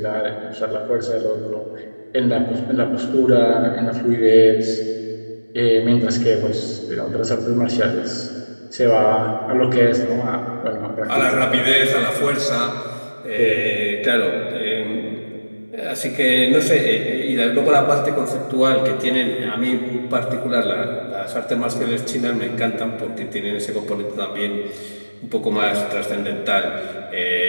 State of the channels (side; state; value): both; inverted; correlation -1.00